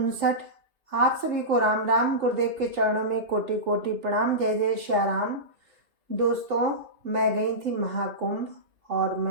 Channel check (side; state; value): left; late; 3.4 ms